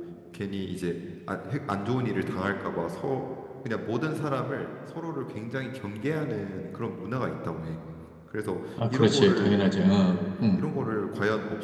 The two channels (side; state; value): both; identical; correlation 1.00